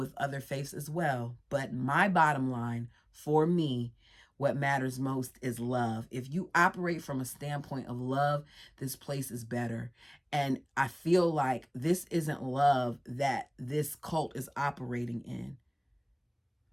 other faiths as well. But my bottom line for me, what matters most is love. If you operate from a standpoint of love, this place is better. And I feel like this isn't love that this cult is operating in.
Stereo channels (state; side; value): identical; both; correlation 1.00